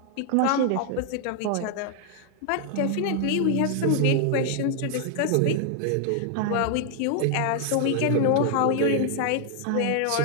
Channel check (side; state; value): both; different; correlation 0.00